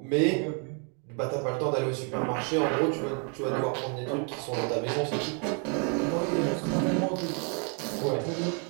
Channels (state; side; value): quieter; left; 39.1 dB